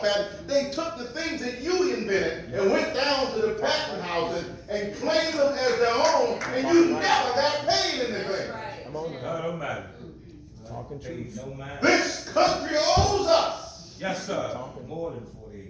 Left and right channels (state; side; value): identical; both; correlation 1.00